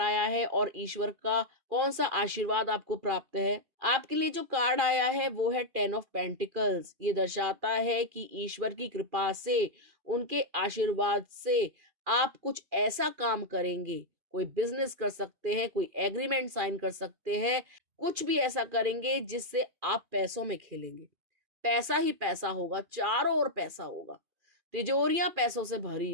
आया है और ईश्वर का कौन सा आशीर्वाद आपको प्राप्त है। आपके लिए जो कार्ड आया है वो है 10 ऑफ पेंटिकल्स। ये दर्शाता है कि ईश्वर की कृपा से, उनके आशीर्वाद से आप कुछ ऐसा काम करेंगे, कोई बिजनेस कर सकते हैं, कोई एग्रीमेंट साइन कर सकते हैं, कुछ भी ऐसा करेंगे जिससे आप पैसों में खेलेंगे। पैसा ही पैसा होगा, चारों ओर पैसा होगा, तिजोरियां पैसों से भरी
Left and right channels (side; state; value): left; late; 2.5 ms